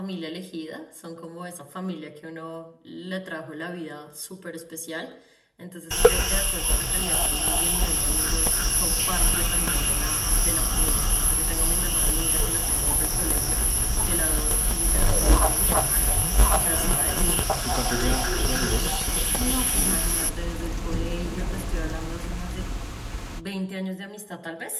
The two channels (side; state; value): both; identical; correlation 1.00